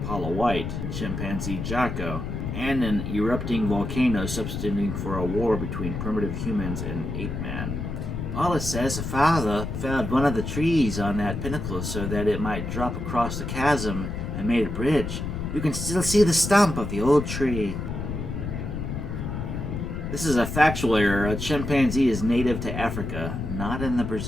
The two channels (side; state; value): left; noise; rumble, 4 dB below the sound